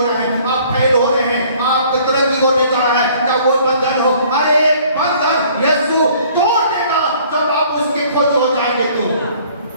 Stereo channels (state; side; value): inverted; both; correlation -0.56